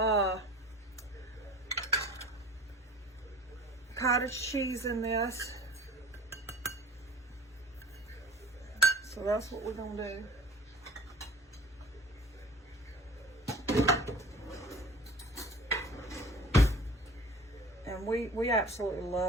cottage cheese in this. So that's what we're going to do. And we absolutely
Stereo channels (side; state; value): both; normal; correlation 0.44